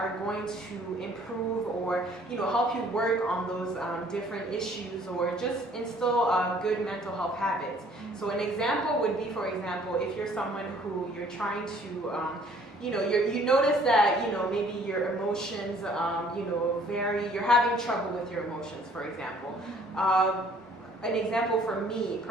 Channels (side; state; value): both; normal; correlation 0.58